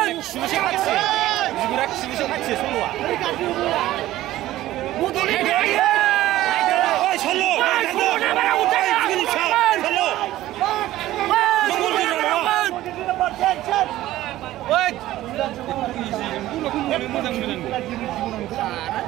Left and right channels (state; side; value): quieter; left; 15.1 dB